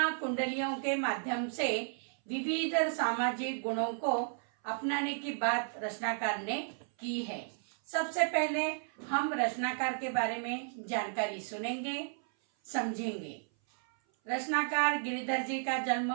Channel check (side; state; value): left; silent; 55 dB below the other